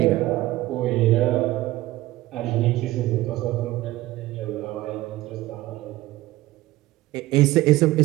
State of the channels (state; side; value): quieter; left; 17.0 dB